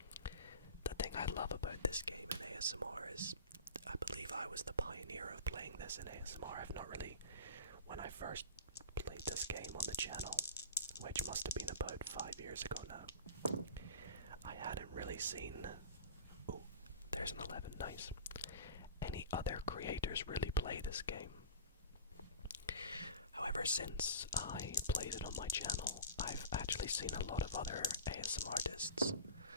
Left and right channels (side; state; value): both; inverted; correlation -0.33